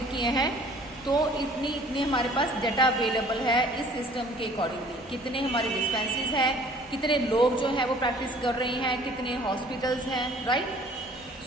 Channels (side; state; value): both; normal; correlation 0.53